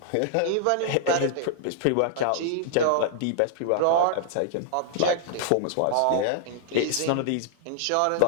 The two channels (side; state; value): both; different; correlation -0.01